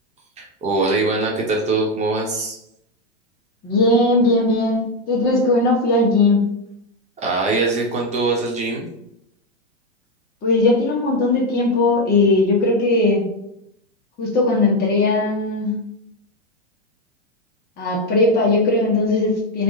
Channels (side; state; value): both; normal; correlation 0.07